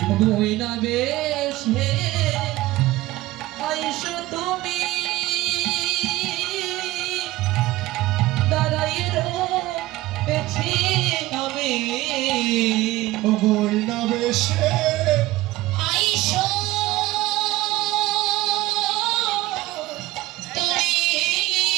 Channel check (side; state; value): left; quieter; 17.8 dB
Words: বইনা বেশে আইসো তুমি দাঁড়াই রয়েছি আমি। ওই না বেশে আইসো তুমি